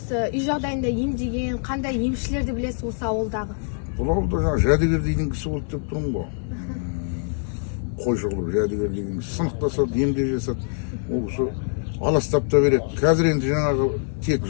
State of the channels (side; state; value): right; silent; 61 dB below the other